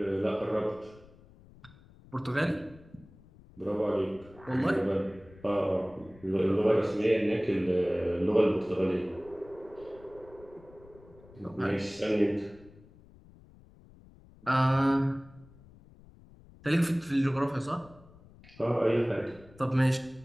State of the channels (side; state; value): left; noise; rumble, 24 dB below the sound